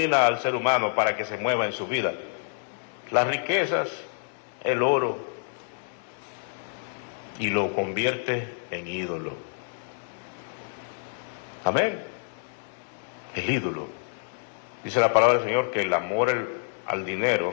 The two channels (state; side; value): silent; right; 60 dB below the other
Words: al ser humano para que se mueva en su vida? Las riquezas, el oro, y lo convierte en ídolo. Amén. El ídolo. Dice la palabra del Señor que el amor al dinero,